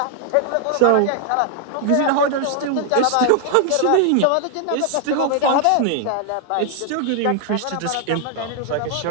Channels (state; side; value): different; both; correlation 0.00